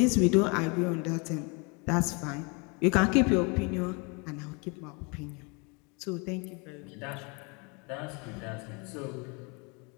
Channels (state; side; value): quieter; right; 31.5 dB